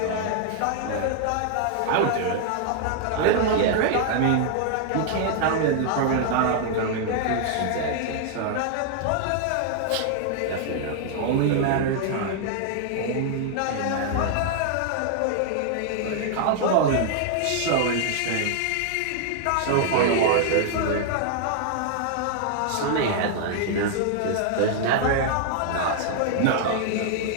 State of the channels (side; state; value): both; different; correlation -0.01